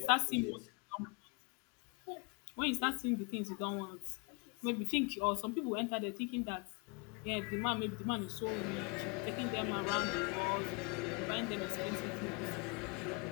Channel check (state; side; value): quieter; right; 31.1 dB